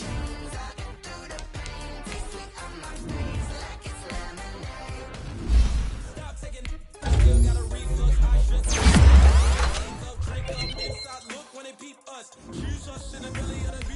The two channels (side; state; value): both; identical; correlation 1.00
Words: I can do the pain. Taste sweet on my face like it's lemonade. Stop taking. Still got a reflux. I should drink up inside. Look when they peep us. Choose us in the belly of the